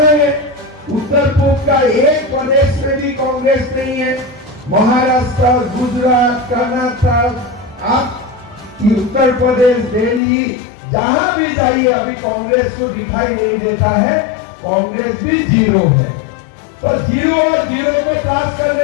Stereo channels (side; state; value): right; drops out; at 10.2 s